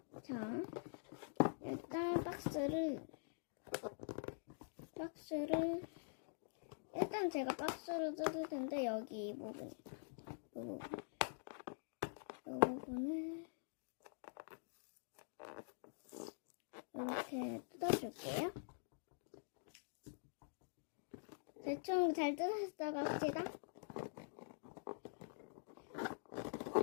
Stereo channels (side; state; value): right; silent; digital silence